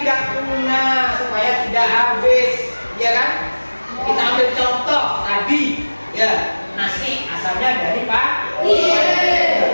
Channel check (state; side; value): inverted; both; correlation -1.00